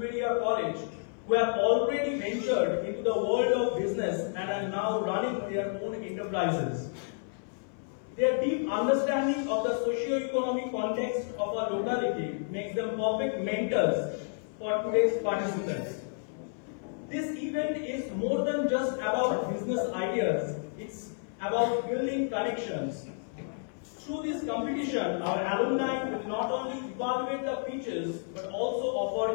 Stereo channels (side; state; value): right; silent; 57 dB below the other